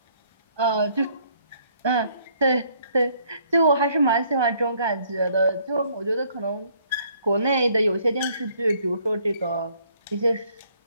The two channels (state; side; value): inverted; both; correlation -0.64